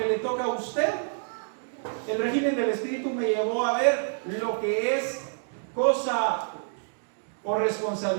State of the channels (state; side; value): silent; left; digital silence